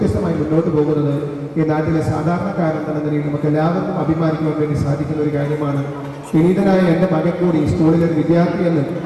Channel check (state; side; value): identical; both; correlation 1.00